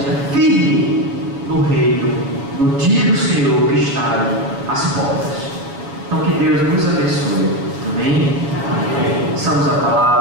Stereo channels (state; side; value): late; left; 7.3 ms